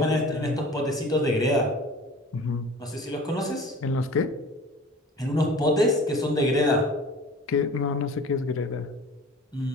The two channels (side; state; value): both; normal; correlation 0.43